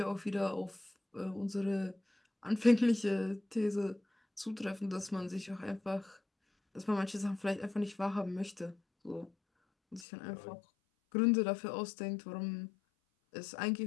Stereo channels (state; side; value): drops out; right; at 10.1 s